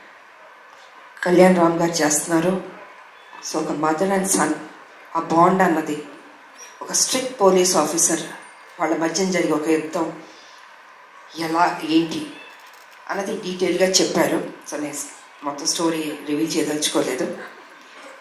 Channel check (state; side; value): identical; both; correlation 1.00